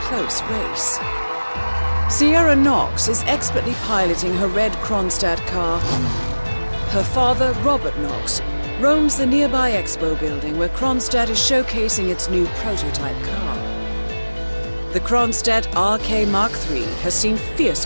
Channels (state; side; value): inverted; both; correlation -1.00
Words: close race. Sierra Knox is expertly piloting her red Kronstadt car. Her father, Robert Knox, roams the nearby expo building where Kronstadt is showcasing its new prototype car. The Kronstadt RK Mark III has seen fierce